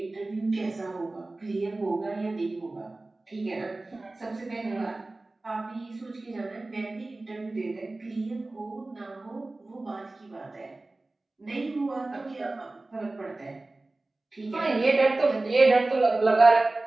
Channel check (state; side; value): quieter; left; 3.0 dB